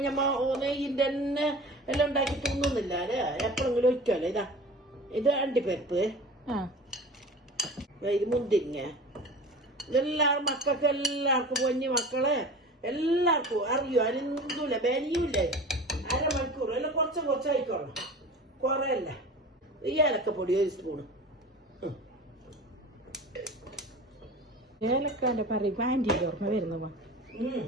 ഞമ്മ നെയ്യിന്റെ തന്നെ എല്ലാം ഉണ്ടാക്കി തിന്നുന്നില്ല അല്ലേ, എപ്പോഴെങ്കിലും ഒഴിക്കാല്ലേ. ഇത് അണ്ടിപ്പരിപ്പ്, ഇത് മുന്തിരിങ്ങ. ഇതെല്ലാവരും മക്കൾക്ക് എല്ലാവർക്കും കുഞ്ഞു മക്കളെ എല്ലാവർക്കും അറിയോ, അരിന്തൂല ബനിയൂല്ലേ. അരമണിക്കൂർ എല്ലാം കുറച്ചായിക്കോളണം, കുറയല്ല. ഈ ഏലക്കപ്പൊടി ഒരു സ്പൂണ്. ഏലക്കാന്റെ പറയുമ്പോ ആന്റിക്ക് ഓർമ്മ വരുന്ന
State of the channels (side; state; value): both; normal; correlation 0.37